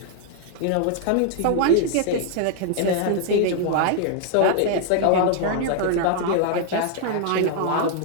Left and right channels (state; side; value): different; both; correlation 0.00